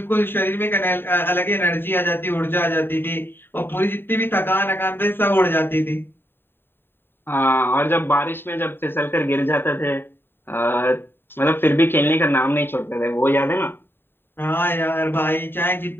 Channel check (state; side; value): late; right; 0.10 ms